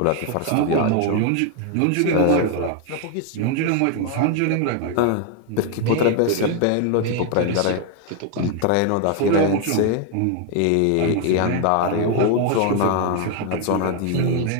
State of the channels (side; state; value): both; different; correlation 0.01